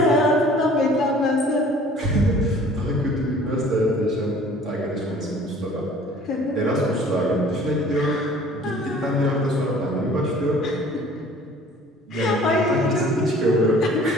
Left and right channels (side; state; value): both; normal; correlation 0.51